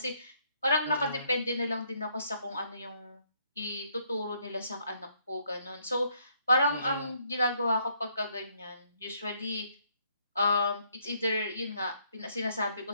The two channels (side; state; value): both; inverted; correlation -0.70